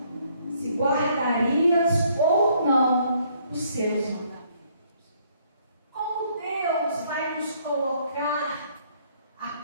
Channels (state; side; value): inverted; both; correlation -0.66